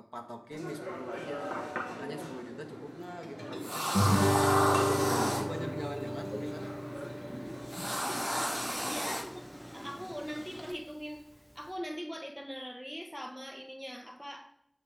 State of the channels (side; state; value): both; identical; correlation 1.00